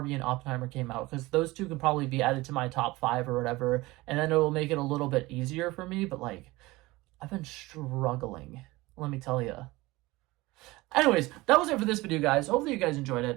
and Oppenheimer came out because those two can probably be added to my top five or whatever, and then it will make it a little bit easier for me. But like, I've been struggling, let me tell you. Anyways, that was it for this video, guys. Hopefully you guys enjoyed it.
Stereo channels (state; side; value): quieter; left; 20.6 dB